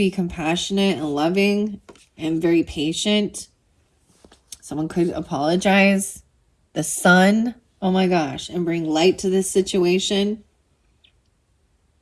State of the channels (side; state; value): both; identical; correlation 1.00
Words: compassionate and loving and very patient. Someone could apologize. The sun, oh my gosh, and bring light to this situation.